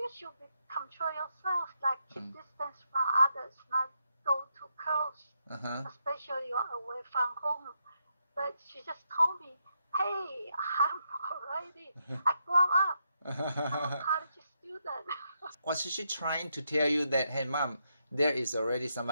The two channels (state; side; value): inverted; both; correlation -0.80